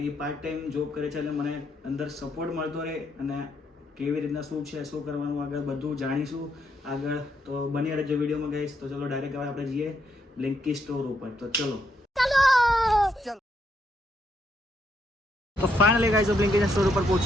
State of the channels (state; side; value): normal; both; correlation 0.77